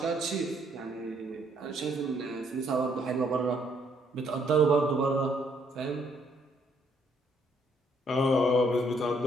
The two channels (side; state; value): both; normal; correlation 0.69